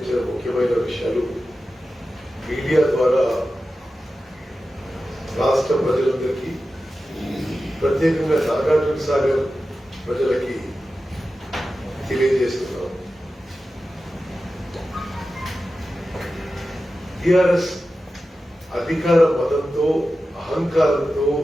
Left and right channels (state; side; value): normal; both; correlation 0.93